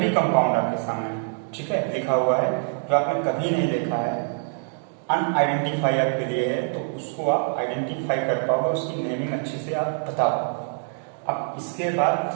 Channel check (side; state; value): left; silent; 62 dB below the other